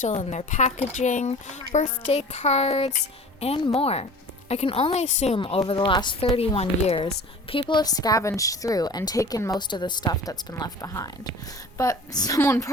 in their packaging, birthday cards, and more. I can only assume over the last 31 years, people have scavenged through and taken most of the stuff that's been left behind. But someone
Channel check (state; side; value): normal; both; correlation 0.41